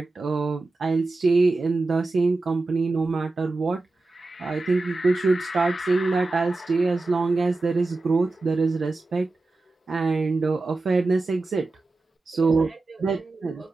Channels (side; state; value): left; quieter; 3.3 dB